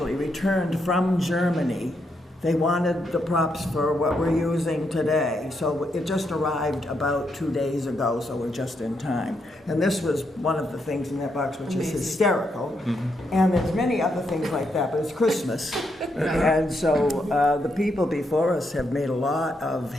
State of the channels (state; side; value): normal; both; correlation 0.79